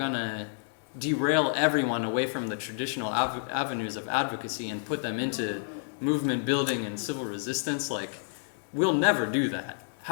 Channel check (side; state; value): right; silent; digital silence